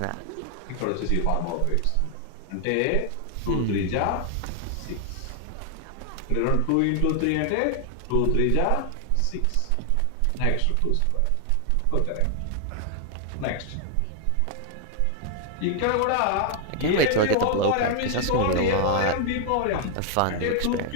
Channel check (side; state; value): both; different; correlation 0.00